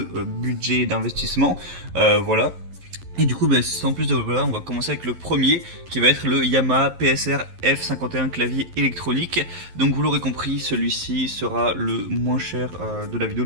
budget d'investissement. Voilà. Et du coup, sans plus de voilà, on va commencer avec le premier, qui va être le Yamaha PSR F51 clavier électronique. Donc vous l'aurez compris, celui-ci sera le moins cher de la vidéo.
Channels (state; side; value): late; left; 11 ms